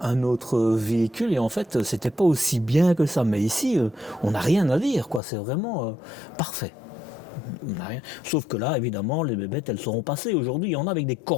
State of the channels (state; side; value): drops out; right; at 5.2 s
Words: véhicule et en fait, c'était pas aussi bien que ça. Mais ici, on n'a rien à dire, quoi. C'est vraiment parfait. On n'a rien. Sauf que là, évidemment, les bébêtes, elles seront passées. Aujourd'hui, il y en a avec des